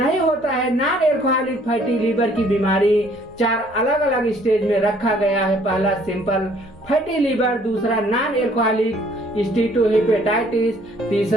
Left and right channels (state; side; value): normal; both; correlation 0.60